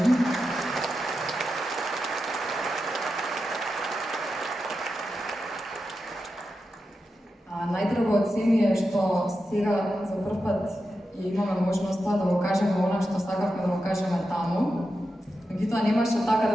Најдраго од се ми е што сега за прв пат имаме можноста да го кажеме она што сакавме да го кажеме таму. Меѓутоа немаше така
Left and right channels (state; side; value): normal; both; correlation 0.89